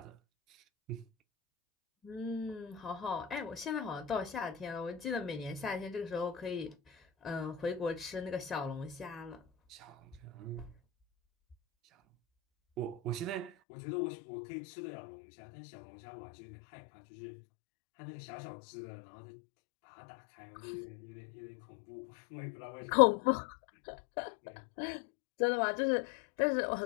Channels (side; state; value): right; drops out; at 13.5 s